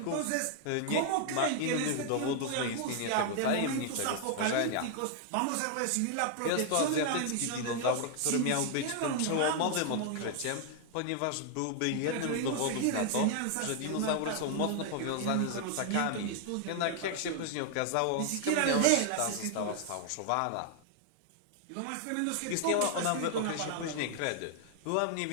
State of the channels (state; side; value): different; both; correlation 0.00